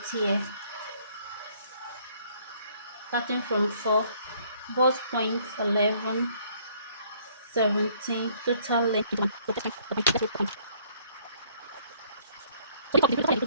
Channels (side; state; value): both; inverted; correlation -0.62